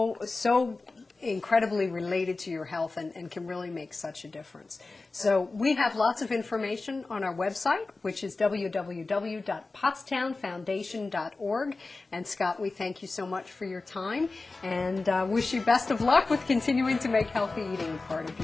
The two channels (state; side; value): quieter; right; 3.6 dB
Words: incredibly related to your health and can really make such a difference. So we have lots of information on our website, which is www.pottstownfoundation.org. And Scott, we thank you so much for your time and wish you best of luck with continuing to make healthy eating a part of